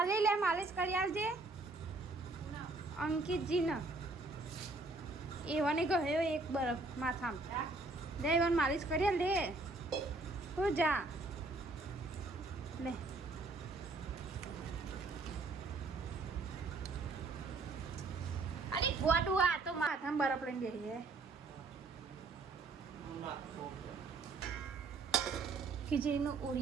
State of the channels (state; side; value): quieter; left; 3.4 dB